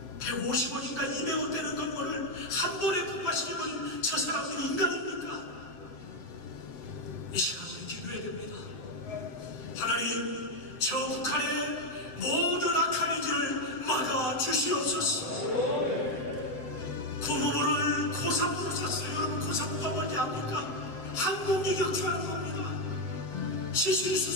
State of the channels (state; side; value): late; right; 7.7 ms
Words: 150억인가 200억 되는 건물을 한 번에 폭파시켜버린 저 사람들이 인간입니까? 이 시간 우리 기도해야 됩니다. 하나님, 저 북한의 모든 악한 의지를 막아주시옵소서. 고모부를 고사부로 샀어요. 여러분, 고사부가 뭔지 압니까? 항공기 격추하는 겁니다. 시술이